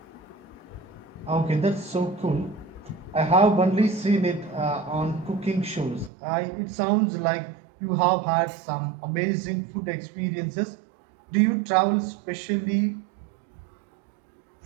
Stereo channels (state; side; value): drops out; left; at 6.1 s